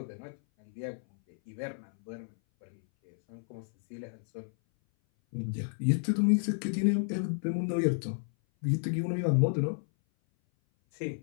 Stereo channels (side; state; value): right; silent; 57 dB below the other